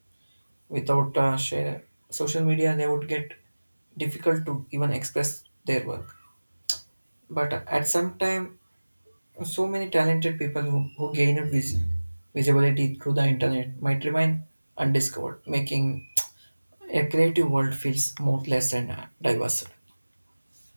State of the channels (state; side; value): inverted; both; correlation -1.00